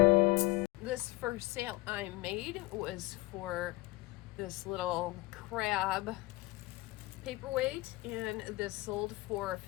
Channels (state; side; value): quieter; right; 20.9 dB